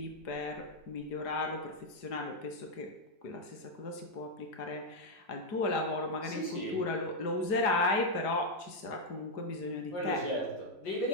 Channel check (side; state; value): right; late; 4.9 ms